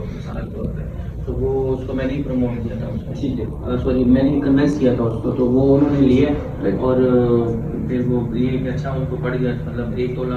मिसाल के तौर पे, तो वो उसको मैंने ही प्रमोट किया था उसको, ठीक है, सॉरी मैंने ही कन्वेंस किया था उसको, तो वो उन्होंने लिया और फिर वो ये कि अच्छा उनको पड़ गया, मतलब 1 तोला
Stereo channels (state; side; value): identical; both; correlation 1.00